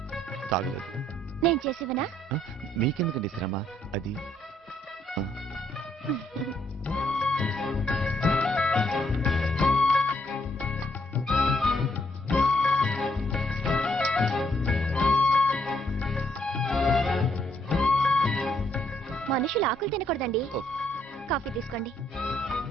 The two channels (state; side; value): normal; both; correlation 0.71